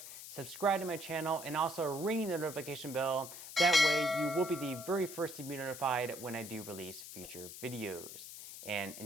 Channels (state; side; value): noise; left; hiss, 12 dB below the sound